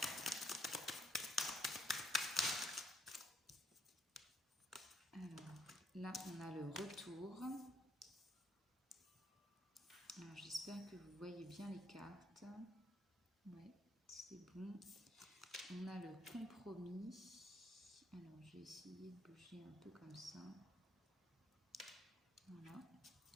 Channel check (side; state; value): both; normal; correlation 0.70